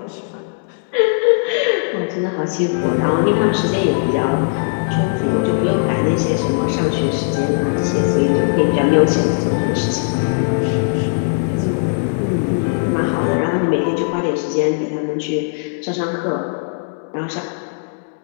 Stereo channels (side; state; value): right; silent; digital silence